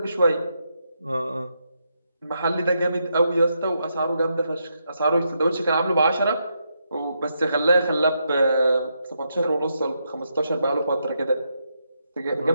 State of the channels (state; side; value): inverted; both; correlation -0.81